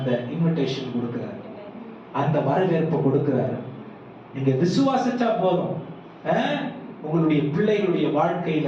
இன்விடேஷன் கொடுக்கிறார், அந்த வரவேற்பு கொடுக்கிறார். நீங்க விசுவாசிச்சா போதும். உங்களுடைய பிள்ளைகளுடைய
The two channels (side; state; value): both; identical; correlation 1.00